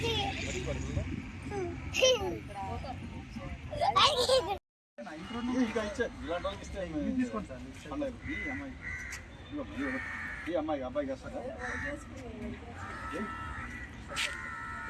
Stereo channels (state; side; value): identical; both; correlation 1.00